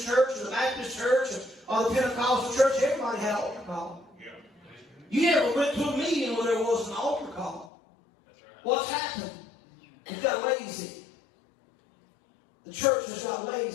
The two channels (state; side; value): drops out; right; at 7.7 s